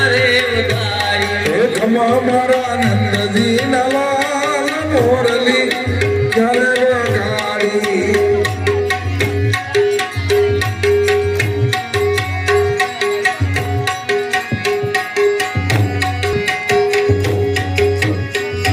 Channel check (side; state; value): both; identical; correlation 1.00